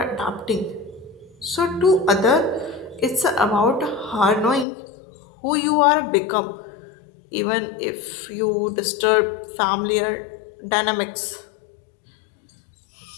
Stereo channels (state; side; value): drops out; right; at 4.7 s